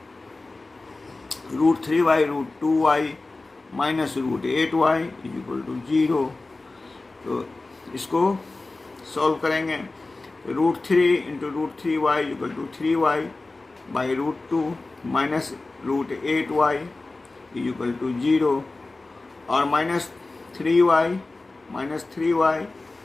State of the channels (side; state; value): right; quieter; 3.3 dB